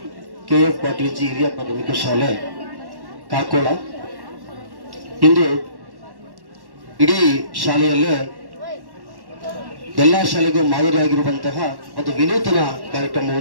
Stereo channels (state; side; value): late; left; 1.1 ms